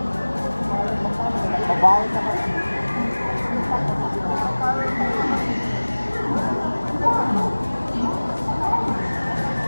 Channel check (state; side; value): inverted; both; correlation -1.00